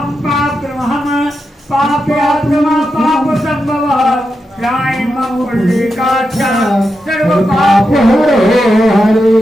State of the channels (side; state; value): both; normal; correlation 0.87